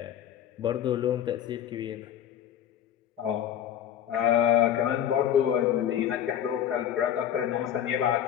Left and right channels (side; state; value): right; quieter; 10.1 dB